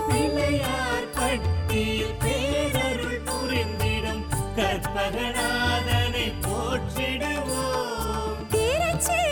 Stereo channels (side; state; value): both; identical; correlation 1.00